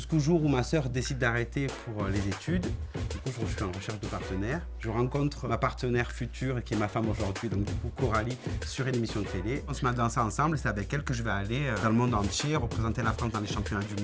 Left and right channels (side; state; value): both; identical; correlation 1.00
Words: jour où ma sœur décide d'arrêter pour les études. Du coup, je suis en recherche de partenaire. Je rencontre ma partenaire future, qui est ma femme aujourd'hui, donc du coup Coralie, sur une émission de télé. On se met à danser ensemble et c'est avec elle que je vais aller dans le monde entier, représenter la France dans les championnats du